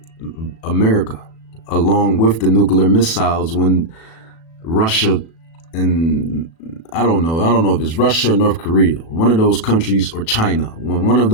America, along with the nuclear missiles when Russia and I don't know if it's Russia or North Korea, one of those countries, or China, when one of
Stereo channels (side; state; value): right; late; 37 ms